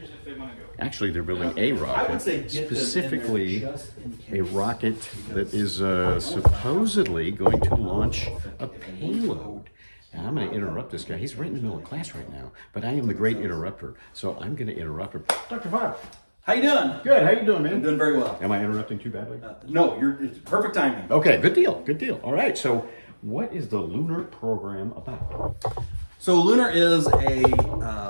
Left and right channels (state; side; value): inverted; both; correlation -1.00